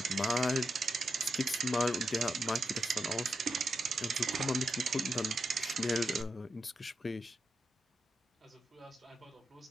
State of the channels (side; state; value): both; normal; correlation 0.85